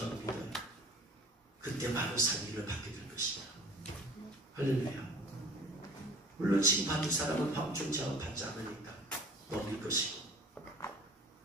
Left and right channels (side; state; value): both; normal; correlation 0.45